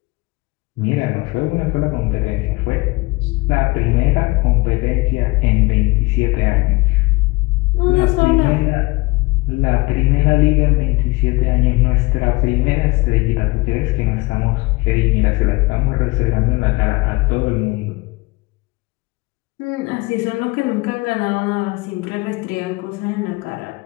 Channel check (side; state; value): right; quieter; 23.6 dB